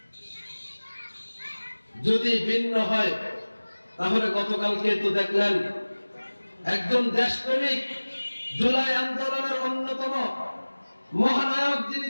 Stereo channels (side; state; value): both; inverted; correlation -1.00